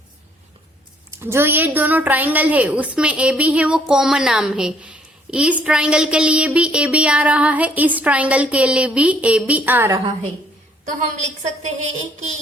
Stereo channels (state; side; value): normal; both; correlation 0.64